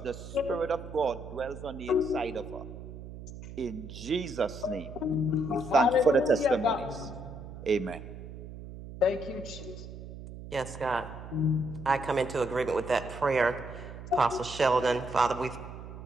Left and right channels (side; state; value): right; noise; hum, 12 dB below the sound